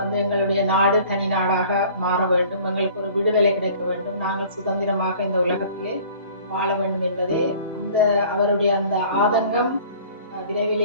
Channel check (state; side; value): inverted; both; correlation -0.49